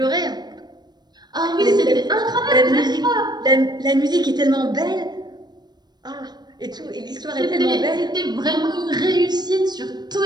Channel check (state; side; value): late; left; 0.20 ms